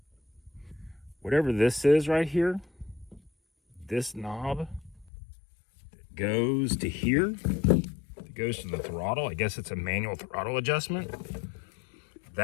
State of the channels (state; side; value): drops out; right; at 5.1 s